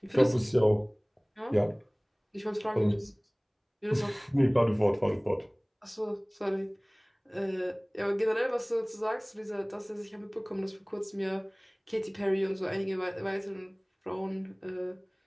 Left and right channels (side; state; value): both; identical; correlation 1.00